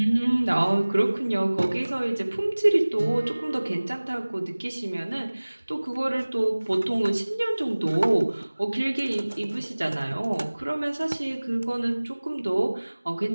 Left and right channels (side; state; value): both; inverted; correlation -1.00